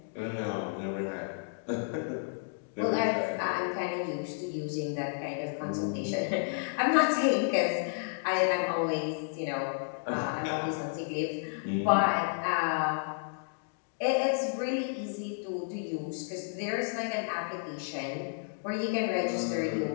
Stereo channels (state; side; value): silent; right; digital silence